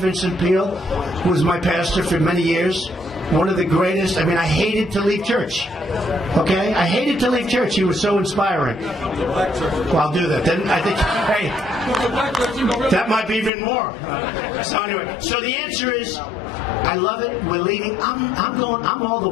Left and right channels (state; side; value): drops out; right; at 13.5 s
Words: Peale, who was my pastor for many years. One of the greatest. I mean, I hated to leave church. Okay? I hated to leave church. He was so inspiring. Well, I'll do that. Then I think, hey, that might be even more. So anyway, so the answer is, I love it. We're leading. I'm all the